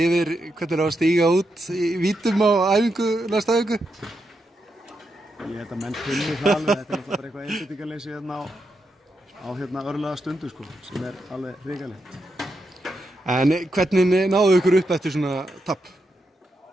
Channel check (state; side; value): normal; both; correlation 0.84